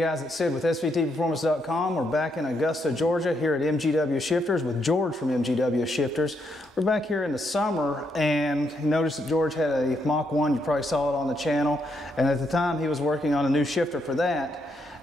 it's Sid with SVTperformance.com. We're back in Augusta, Georgia here at MGW Shifters with George from MGW Shifters. We're back here in the summer, and you noticed that George had a Mach 1. You probably saw it on the channel, and at the time he was working on a new shifter for that.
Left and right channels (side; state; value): both; normal; correlation 0.77